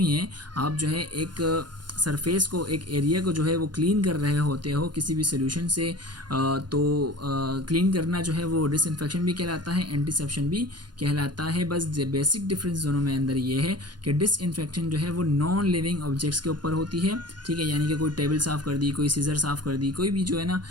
है। आप जो है एक सरफेस को, एक एरिया को जो है वो क्लीन कर रहे होते हो किसी भी सोल्यूशन से, तो क्लीन करना जो है वो डिसइंफेक्शन भी कहलाता है, एंटीसेप्शन भी कहलाता है। बस बेसिक डिफरेंस दोनों में अंदर ये है कि डिसइंफेक्शन जो है वो नॉन लिविंग ऑब्जेक्ट्स के ऊपर होती है। ठीक है, यानी कि कोई टेबल साफ़ कर दी, कोई सीजर साफ़ कर दी, कोई भी जो है ना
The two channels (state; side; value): late; left; 0.71 ms